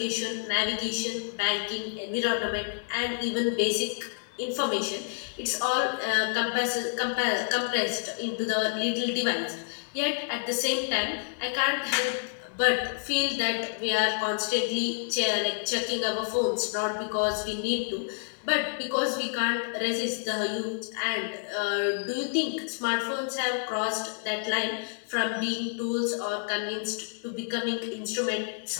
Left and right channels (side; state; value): right; silent; digital silence